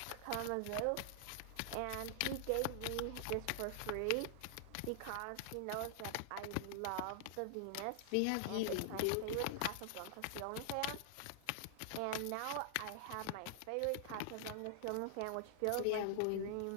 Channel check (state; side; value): different; both; correlation -0.01